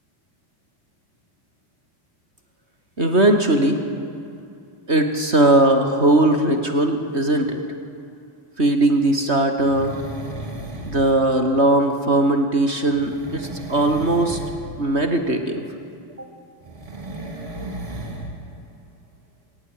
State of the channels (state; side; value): late; left; 3.2 ms